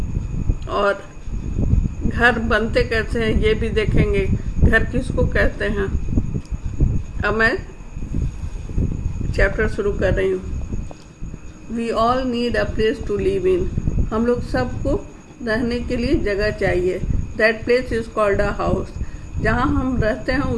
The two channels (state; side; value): identical; both; correlation 1.00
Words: और घर बनते कैसे हैं ये भी देखेंगे, घर किसको कहते हैं। अब मैं चैप्टर शुरू कर रही हूँ। We all need a place to live in, हम लोग सबको रहने के लिए जगह चाहिए। That place is called a house, जहाँ हम रहते हैं